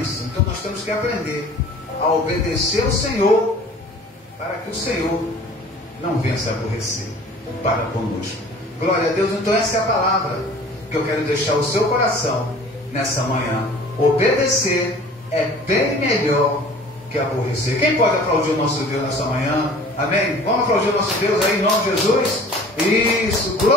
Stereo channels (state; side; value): normal; both; correlation 0.47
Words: Então nós temos que aprender a obedecer o Senhor, para que o Senhor não venha se aborrecer para conosco. Glória a Deus. Então essa é a palavra que eu quero deixar o seu coração nessa manhã. Obedecer é bem melhor que aborrecer. Quem pode aplaudir o nosso Deus nessa manhã? Amém? Vamos aplaudir o nosso Deus aí em nome de Jesus? Isso,